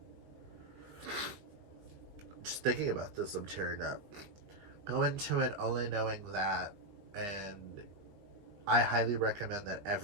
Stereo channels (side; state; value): left; late; 20 ms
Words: Just thinking about this, I'm tearing up. Go into it only knowing that, and I highly recommend that